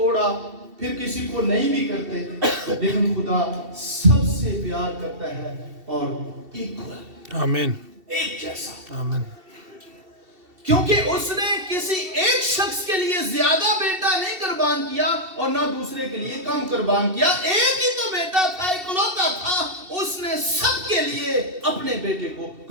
फिर किसी को नहीं भी करते, लेकिन खुदा सबसे प्यार करता है और इक्वल, आमीन, एक जैसा। आमीन। क्योंकि उसने किसी एक शख्स के लिए ज्यादा बेटा नहीं कुर्बान किया और ना दूसरे के लिए कम कुर्बान किया। एक ही तो बेटा था, इकलौता था, उसने सबके लिए अपने बेटे को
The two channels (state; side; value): late; left; 2.7 ms